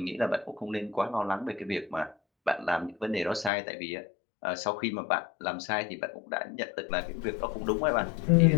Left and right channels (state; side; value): drops out; right; at 3.5 s